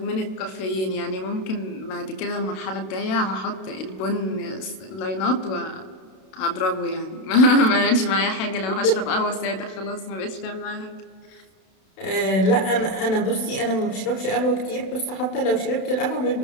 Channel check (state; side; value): late; right; 32 ms